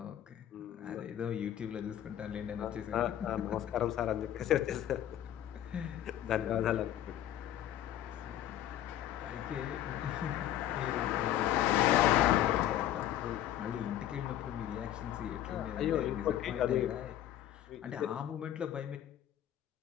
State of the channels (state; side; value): quieter; right; 11.8 dB